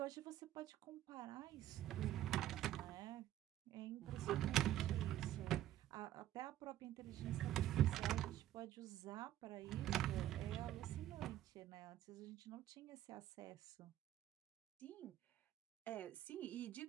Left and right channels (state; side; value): quieter; left; 13.0 dB